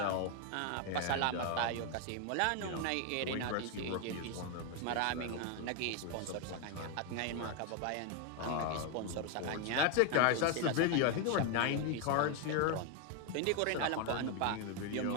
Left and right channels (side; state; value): both; different; correlation 0.01